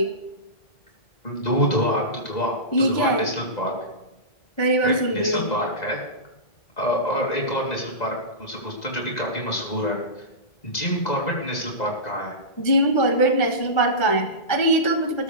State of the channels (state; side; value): late; right; 2.0 ms